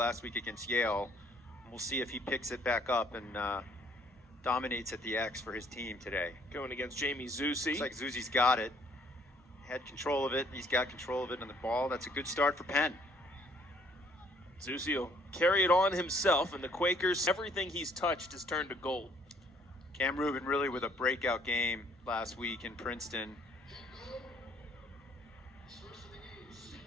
week against Yale. We'll see if he picks it back up and dominates at the X for his team today. Going against Jamie Zusi. Looks like Zusi's got it. Had control of it. He's got control of it on the ball. That's a good start for Penn. Zusi will carry it on himself, and the Quakers, everything he's touched has turned to gold. Cam Rubin really with a breakout game last week in Princeton.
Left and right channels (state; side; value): normal; both; correlation 0.61